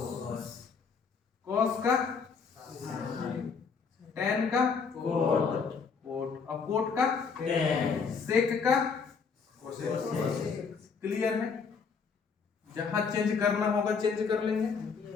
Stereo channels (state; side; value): quieter; right; 5.5 dB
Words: कॉस का tan का कोट, और कोट का सेक का कोसेक। क्लियर है? जहां चेंज करना होगा चेंज कर लेंगे,